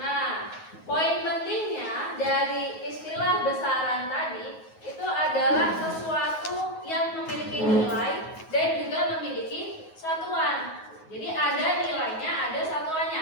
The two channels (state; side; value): late; right; 9.4 ms